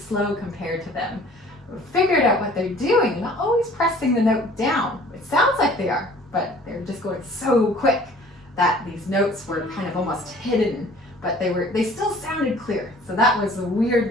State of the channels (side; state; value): both; normal; correlation 0.51